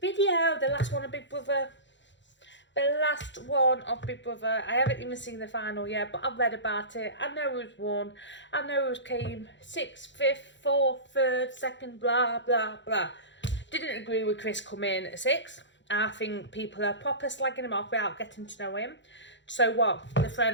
the last one of Big Brother. The last one of Big Brother. I haven't even seen the final yet, but I've read about it. I know who's won. I know who's came 6th, 5th, 4th, 3rd, 2nd, blah, blah, blah. Didn't agree with Chris coming 6th. I think people are proper slagging him off without getting to know him. So what? The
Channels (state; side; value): late; right; 0.53 ms